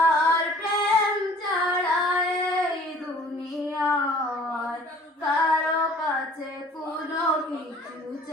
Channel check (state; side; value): normal; both; correlation 0.51